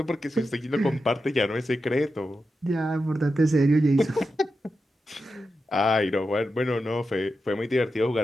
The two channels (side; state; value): both; normal; correlation 0.89